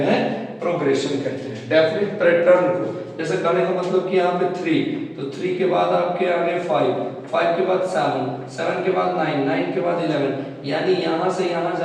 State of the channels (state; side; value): identical; both; correlation 1.00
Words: प्रोग्रेशन कहते हैं। डेफिनेट पैटर्न को, जैसे कहने का मतलब कि यहाँ पे 3, तो 3 के बाद आपके आगे 5, 5 के बाद 7, 7 के बाद 9, 9 के बाद 11, यानी यहाँ से यहाँ